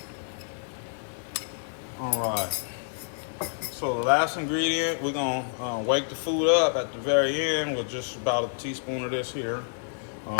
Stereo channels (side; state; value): right; silent; digital silence